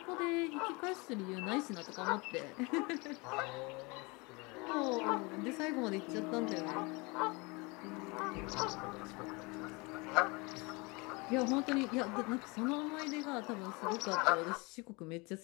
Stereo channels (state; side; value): quieter; right; 27.2 dB